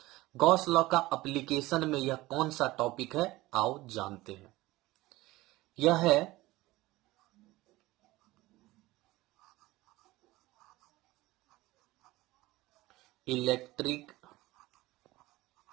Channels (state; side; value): quieter; left; 18.9 dB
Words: गॉस लॉ का एप्लीकेशन में यह कौन सा टॉपिक है, आओ जानते हैं। यह है electric